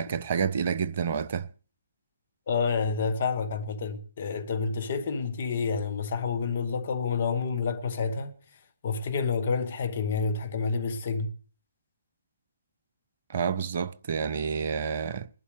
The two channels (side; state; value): both; inverted; correlation -0.61